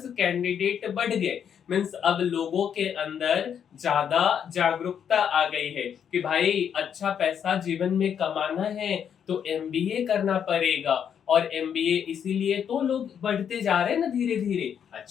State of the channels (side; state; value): right; quieter; 8.2 dB